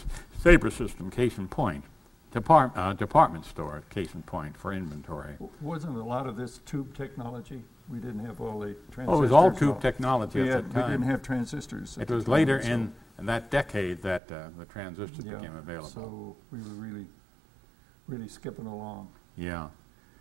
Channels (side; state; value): left; drops out; at 14.2 s